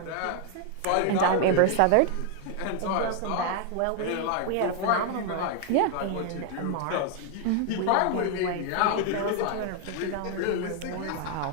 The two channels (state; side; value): different; both; correlation 0.00